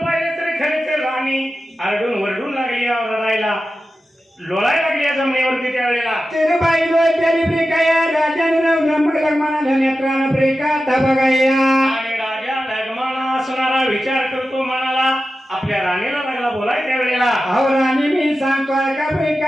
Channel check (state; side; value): normal; both; correlation 0.93